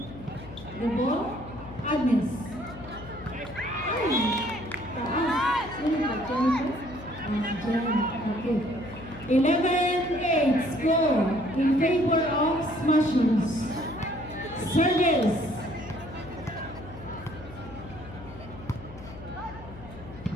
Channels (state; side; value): noise; left; hum, 16 dB below the sound